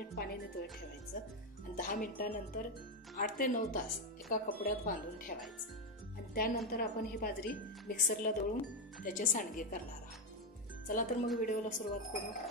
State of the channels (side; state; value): both; normal; correlation 0.08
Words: पाणी नितळत ठेवायचं आणि 10 मिनिटानंतर 8 ते 9 तास एका कपड्यात बांधून ठेवायचं आणि त्यानंतर आपण ही बाजरी मिक्सरला दळून त्याचे सांडगे करणार आहोत। चला तर मग व्हिडिओला सुरुवात करू।